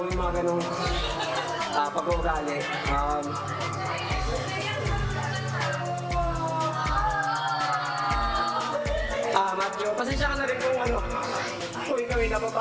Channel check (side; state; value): both; identical; correlation 1.00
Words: mo yung mga ganong pag-uugali. Matthew, pasensya ka na rin kung ikaw ay